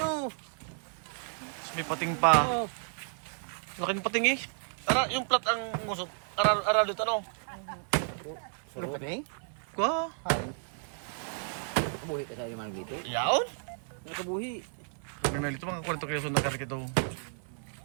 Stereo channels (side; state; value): left; silent; 56 dB below the other